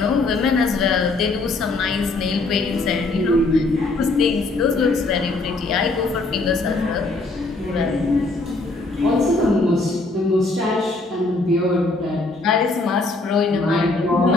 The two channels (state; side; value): quieter; right; 3.3 dB